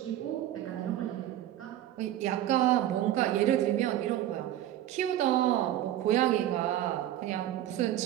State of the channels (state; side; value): quieter; left; 12.8 dB